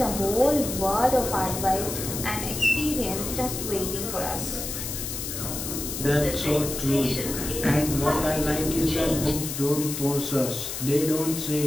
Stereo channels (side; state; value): left; noise; hiss, 5 dB below the sound